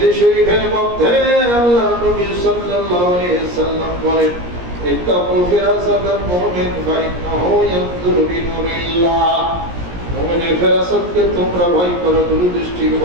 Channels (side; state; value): left; late; 17 ms